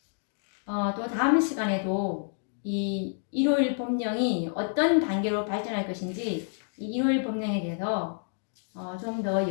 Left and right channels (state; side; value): silent; right; digital silence